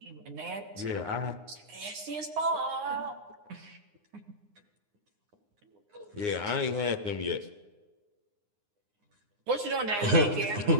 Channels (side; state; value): left; late; 9.7 ms